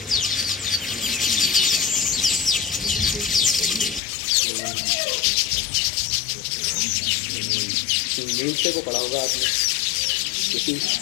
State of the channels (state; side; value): drops out; right; at 4.0 s